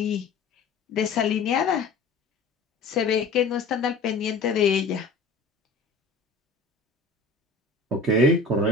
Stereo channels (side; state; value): right; quieter; 3.7 dB